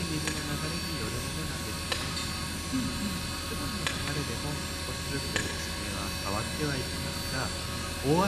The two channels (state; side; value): identical; both; correlation 1.00